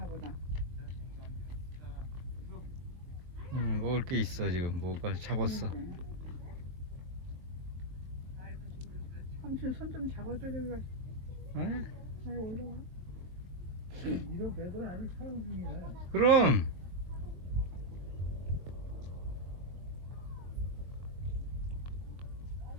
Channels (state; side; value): late; left; 22 ms